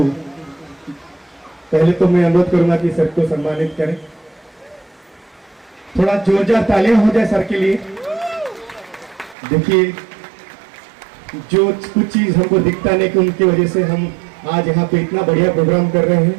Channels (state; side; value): drops out; left; at 9.3 s